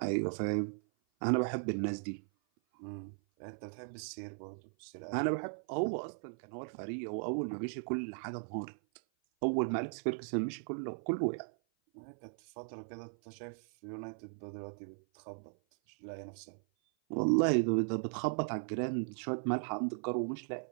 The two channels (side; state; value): left; silent; 53 dB below the other